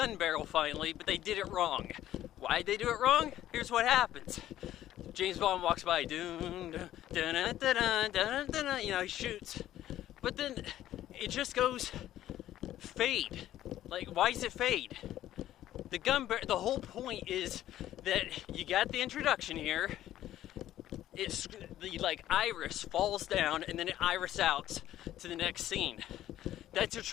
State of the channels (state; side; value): quieter; right; 13.0 dB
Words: barrel finally, but they did it wrong. Why'd they do it wrong? Here's what happens. James Bond walks by, he shoots. But then it just goes fade. Like, why does it fade? The whole point is that you got the introduction here. It's the iris falls down and then it iris out to the next scene. That's a